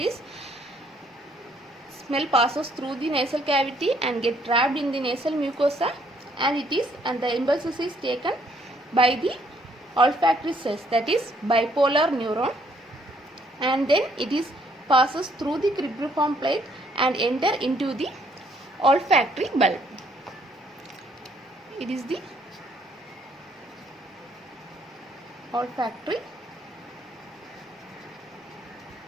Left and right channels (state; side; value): normal; both; correlation 0.67